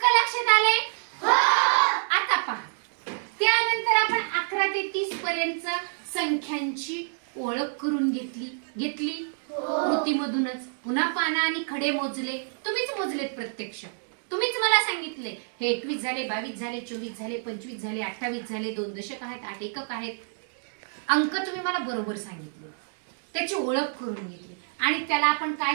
लक्षात आले? आता पहा. त्यानंतर आपण 11 ते 30 पर्यंत संख्यांची ओळख करून घेतली कृतीमधूनच. पुन्हा पानं आणि खडे मोजले. तुम्हीच मोजलेत प्रत्यक्ष. तुम्हीच मला सांगितले हे 21 झाले, 22 झाले, 24 झाले, 25 झाले, 28 झाले. 2 दशक आहेत, 8 एकक आहेत. अंक तुम्ही मला बरोबर सांगितले. त्याची ओळख करून घेतली आणि त्याला आपण काय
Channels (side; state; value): left; silent; digital silence